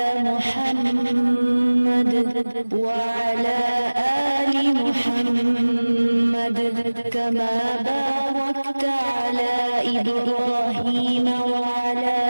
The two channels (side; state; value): both; inverted; correlation -1.00